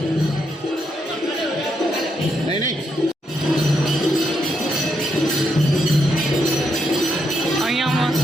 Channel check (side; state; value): both; normal; correlation 0.80